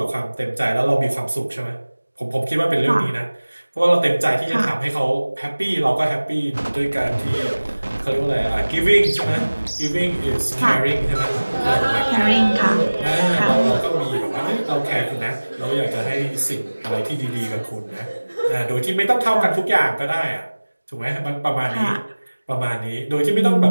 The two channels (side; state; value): both; inverted; correlation -1.00